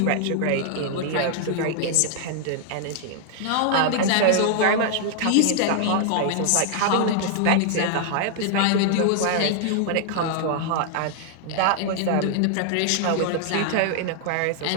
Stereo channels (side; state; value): both; different; correlation -0.01